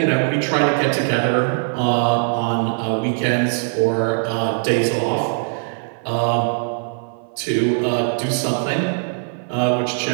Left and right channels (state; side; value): silent; left; 58 dB below the other